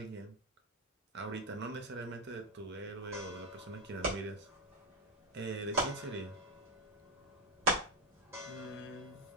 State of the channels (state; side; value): normal; both; correlation 0.07